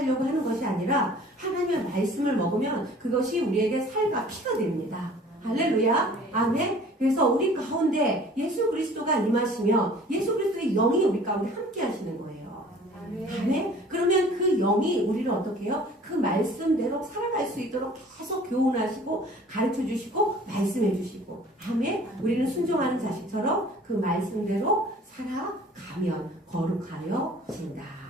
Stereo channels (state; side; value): normal; both; correlation 0.49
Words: 하는 것이 아니라 하나님의 말씀을 먹으면 그것이 우리에게 살과 피가 됩니다. 할렐루야. 아멘. 그래서 우리 가운데 예수 그리스도가 임하시면 예수 그리스도의 영이 우리 가운데 함께 하시는 거예요. 아멘. 그러면 그 영이 우리를 어떻게 해요? 그 말씀대로 살아갈 수 있도록 계속 교훈하시고 가르쳐 주시고 말씀해 주시고. 아멘. 우리는 순종하는 자식처럼 그 말씀대로 살아가면 거룩하여 진다.